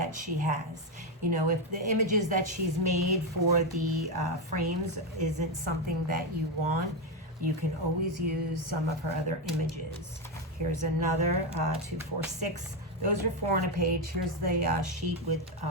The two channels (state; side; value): normal; both; correlation 0.08